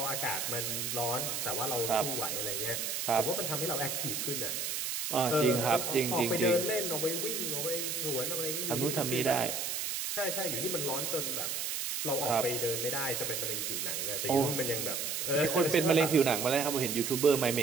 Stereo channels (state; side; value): noise; right; hiss, 2 dB below the sound